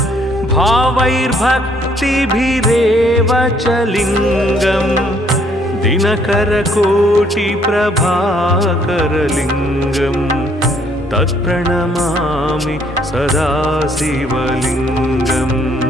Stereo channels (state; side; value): normal; both; correlation 0.65